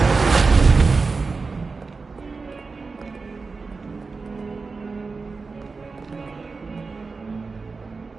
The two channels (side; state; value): left; quieter; 4.3 dB